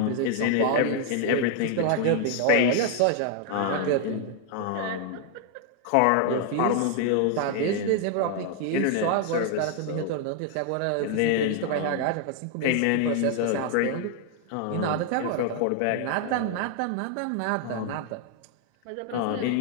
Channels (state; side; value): different; both; correlation 0.00